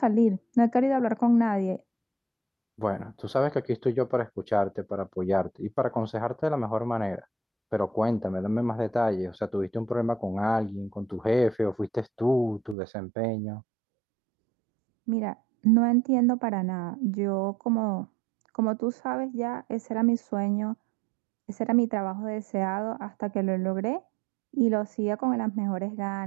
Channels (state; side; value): drops out; left; at 12.8 s